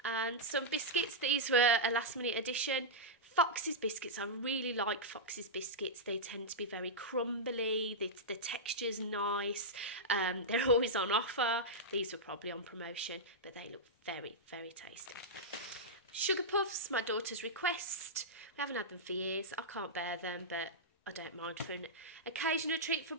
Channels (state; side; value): normal; both; correlation -0.10